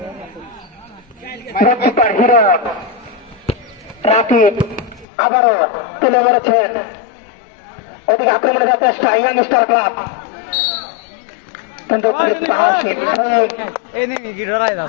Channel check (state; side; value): drops out; right; at 5.1 s